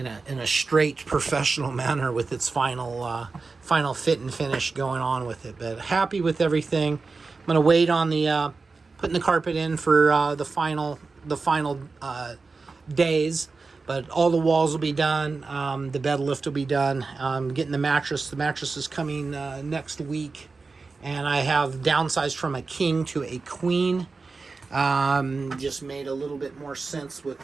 straight professional manner with its final fit and finish going on with it. But happy with everything. I'm going to wait on the putting the carpet in for the final days, but all the walls will be done. The bed lift will be done. Getting the mattress is coming next week, and I have downsized from a king to a queen. Just made a little bit more sense with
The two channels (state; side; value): quieter; left; 4.1 dB